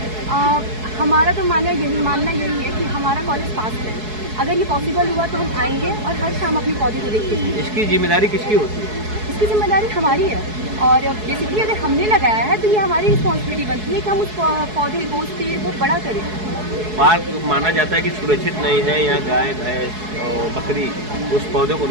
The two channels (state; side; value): late; left; 4.7 ms